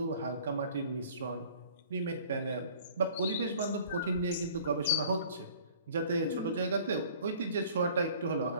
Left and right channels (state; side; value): inverted; both; correlation -0.51